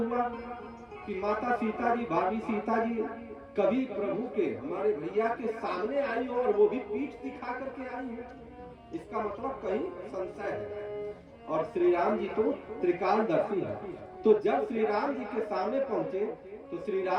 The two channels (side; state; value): both; identical; correlation 1.00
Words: कि माता सीता जी, भाभी सीता जी कभी प्रभु के, हमारे भैया के सामने आई हो और वो भी पीठ दिखा करके आई हो। इसका मतलब कहीं संशय है। और श्री राम जी तो त्रिकालदर्शी है। तो जब श्री राम जी के सामने पहुंचे तो श्री